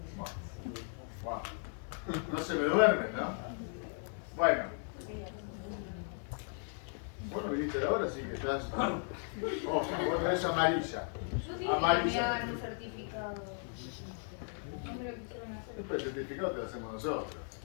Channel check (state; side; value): silent; right; 54 dB below the other